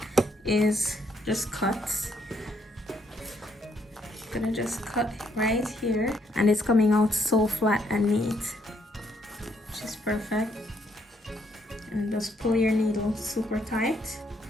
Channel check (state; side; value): normal; both; correlation 0.72